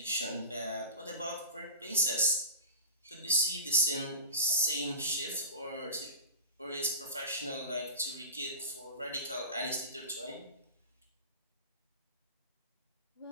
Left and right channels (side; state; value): both; inverted; correlation -0.31